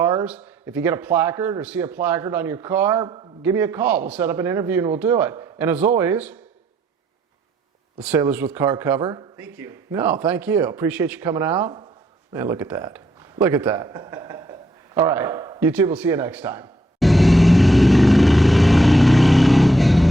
If you get a placard or see a placard on your car, give me a call. We'll set up an interview and we'll do it. And as always, the Sailors with Car cover. Thank you. No, thank you. Appreciate you coming out. Man, look at that. Look at that. All right, YouTube, we'll see you next time.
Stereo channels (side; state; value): both; normal; correlation 0.72